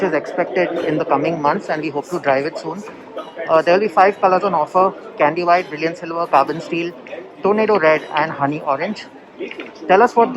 is expected in the coming months and we hope to drive it soon. There will be 5 colors on offer: candy white, brilliant silver, carbon steel, tornado red and honey orange. Tell us, what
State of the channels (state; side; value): identical; both; correlation 1.00